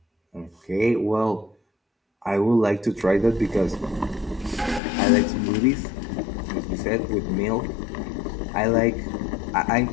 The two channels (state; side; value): drops out; right; at 4.8 s